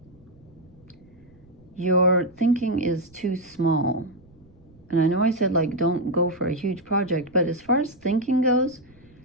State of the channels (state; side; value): noise; right; rumble, 29 dB below the sound